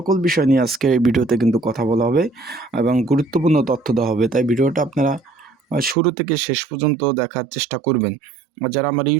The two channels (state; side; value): drops out; left; at 6.0 s